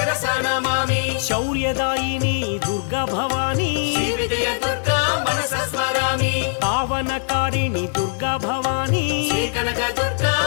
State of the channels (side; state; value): right; silent; digital silence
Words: నమామి శౌర్యదాయిని దుర్గా భవానీ శ్రీ విజయ దుర్గా మనస స్మరామి పావనకారిణి దుర్గా భవానీ శ్రీ కనక దుర్గా